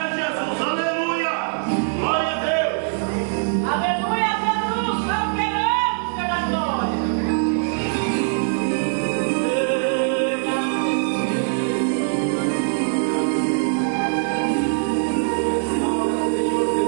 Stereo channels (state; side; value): silent; left; 64 dB below the other